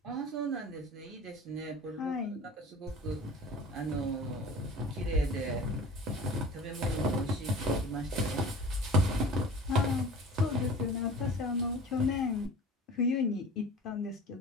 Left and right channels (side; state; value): both; normal; correlation 0.40